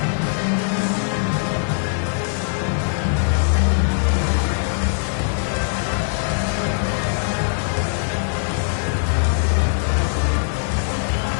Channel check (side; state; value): right; silent; digital silence